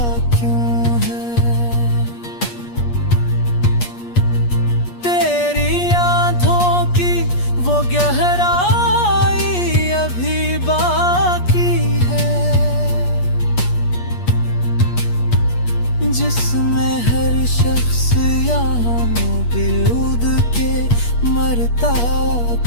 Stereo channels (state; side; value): late; right; 8.4 ms